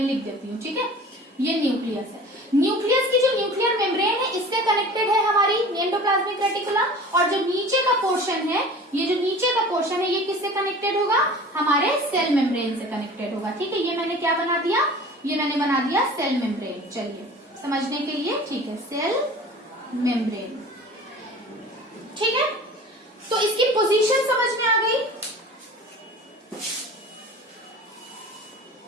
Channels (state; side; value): normal; both; correlation 0.41